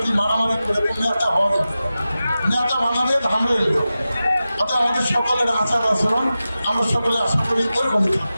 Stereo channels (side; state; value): both; inverted; correlation -0.94